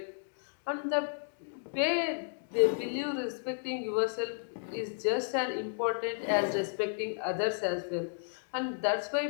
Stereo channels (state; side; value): silent; right; digital silence